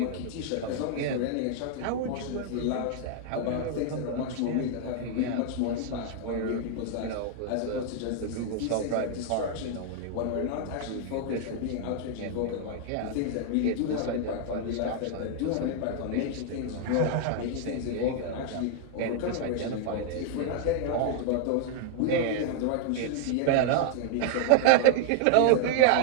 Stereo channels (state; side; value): different; both; correlation -0.01